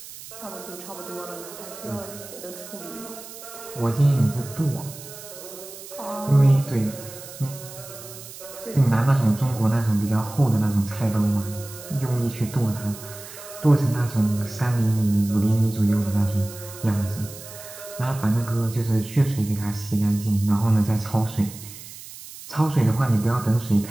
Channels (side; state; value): right; noise; hiss, 15 dB below the sound